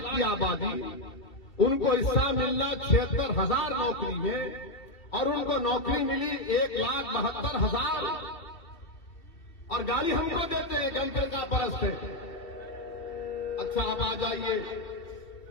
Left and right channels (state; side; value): late; right; 2.7 ms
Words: की आबादी, उनको हिस्सा मिलना 76,000 नौकरी में और उनको नौकरी मिली 1,72,000 और गाली हमको देते हैं कि हम फिरका परस्त है। अच्छा आप आ जाइए